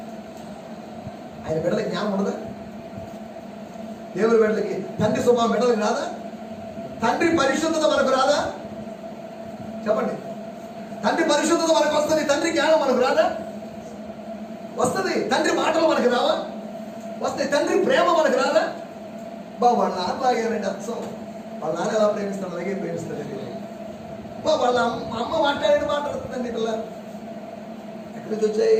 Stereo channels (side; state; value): both; identical; correlation 1.00